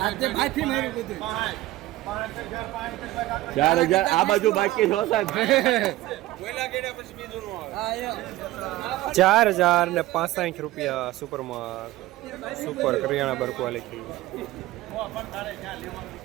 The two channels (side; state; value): left; quieter; 16.9 dB